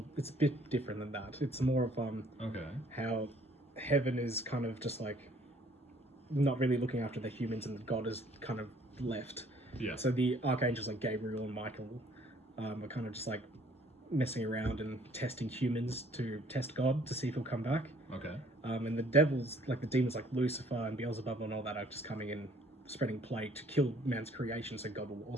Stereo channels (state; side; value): normal; both; correlation 0.59